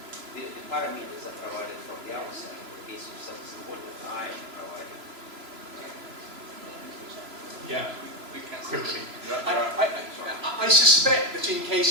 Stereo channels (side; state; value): left; late; 3.0 ms